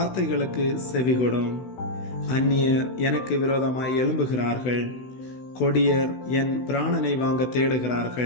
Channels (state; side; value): late; right; 16 ms